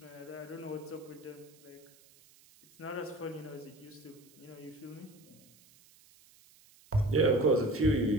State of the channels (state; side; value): noise; right; hiss, 26 dB below the sound